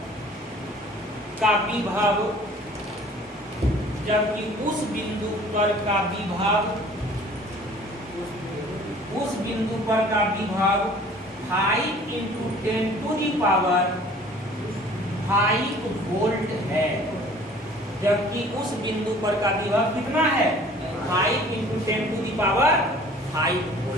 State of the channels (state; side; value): normal; both; correlation 0.50